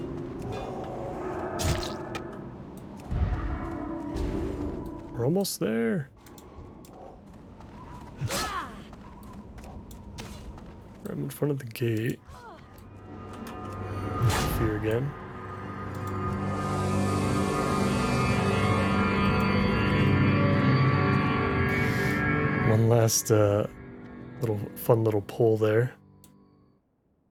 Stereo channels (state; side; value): identical; both; correlation 1.00